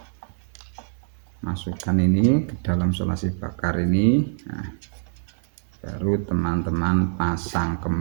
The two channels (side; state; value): left; silent; 62 dB below the other